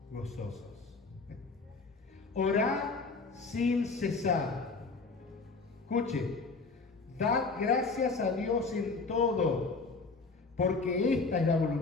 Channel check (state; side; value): quieter; right; 4.1 dB